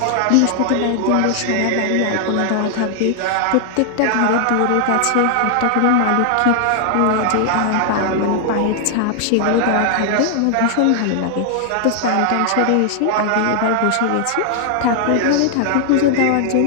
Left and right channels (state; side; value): different; both; correlation 0.00